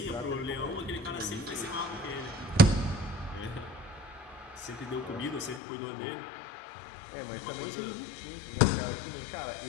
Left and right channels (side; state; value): right; drops out; at 5.6 s